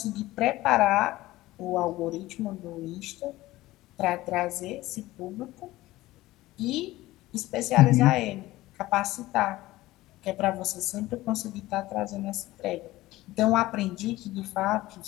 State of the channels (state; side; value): quieter; right; 17.5 dB